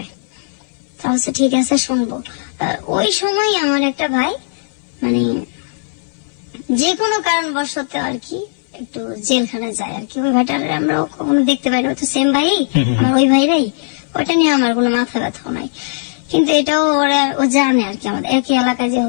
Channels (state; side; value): silent; right; 60 dB below the other